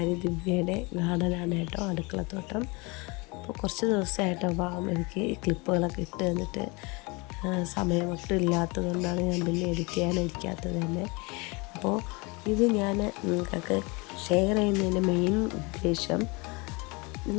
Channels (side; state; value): right; quieter; 27.3 dB